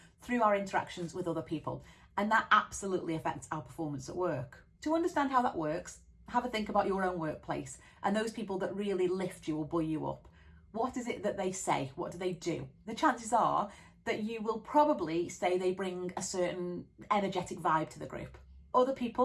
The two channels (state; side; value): identical; both; correlation 1.00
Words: through our interactions with other people, and that absolutely affects our performance at work. To understand how that works, have a think about your own workplace and those people that really lift you or buoy you up. What is it that they say? What do they do? The chances are that you will probably say they bring a certain energetic vibe to the group. Other